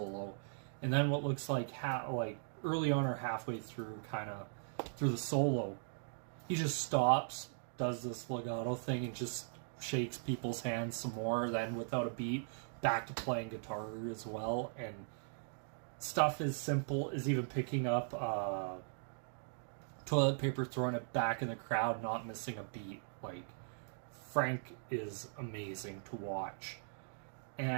and then what looks like early on or halfway through, kind of through the solo, he just stops, does this legato thing, and just shakes people's hands some more. Then without a beat, back to playing guitar as well. And stuff as simple as even picking up toilet paper, throwing it back in the crowd, not missing a beat. Like, Frank is amazing to watch.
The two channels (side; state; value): left; silent; digital silence